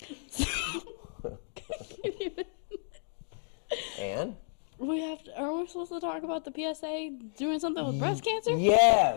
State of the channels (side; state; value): right; silent; digital silence